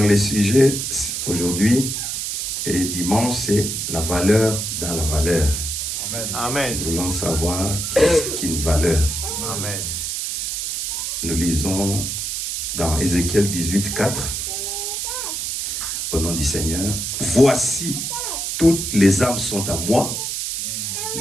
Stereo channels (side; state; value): right; noise; hiss, 3 dB below the sound